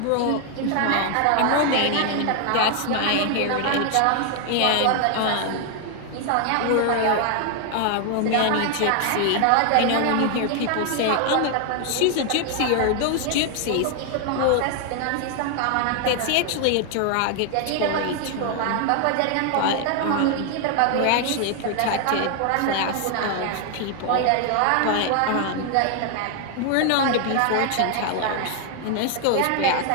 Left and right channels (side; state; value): both; different; correlation 0.00